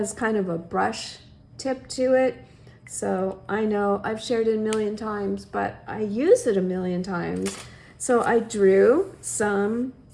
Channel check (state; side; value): identical; both; correlation 1.00